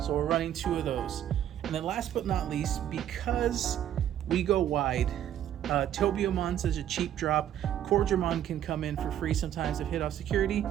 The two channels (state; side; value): quieter; left; 10.9 dB